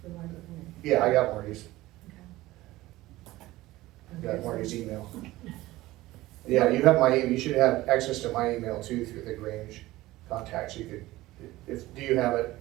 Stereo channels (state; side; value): quieter; left; 17.7 dB